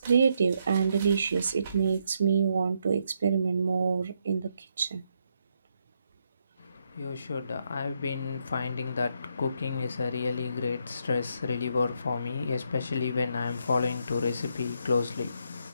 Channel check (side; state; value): both; inverted; correlation -0.77